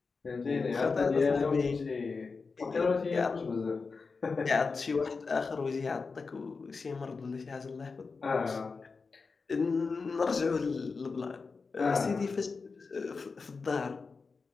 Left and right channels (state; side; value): quieter; right; 4.6 dB